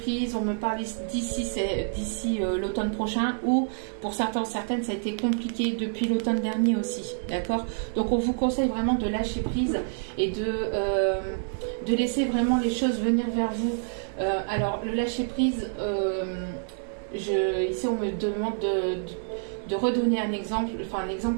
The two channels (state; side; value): silent; left; digital silence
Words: on me parle d'ici l'automne prochain, ou pour certains, certaines, ça a été compliqué depuis l'automne dernier aussi, d'accord? Donc on vous conseille vraiment de lâcher prise et de laisser vraiment les choses venir vers vous. Alors le lâcher prise, ici on me demande de redonner un exemple, enfin